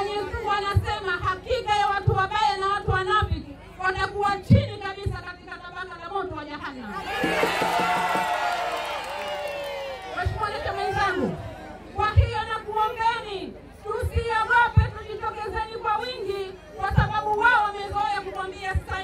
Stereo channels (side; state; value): both; identical; correlation 1.00